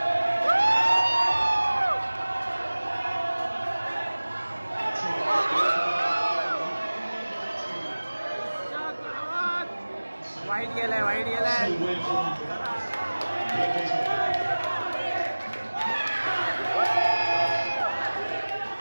वाईट गेलाय, वाईट गेलाय.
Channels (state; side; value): inverted; both; correlation -1.00